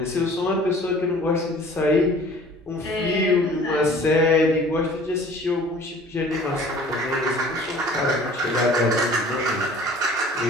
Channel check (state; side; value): normal; both; correlation 0.49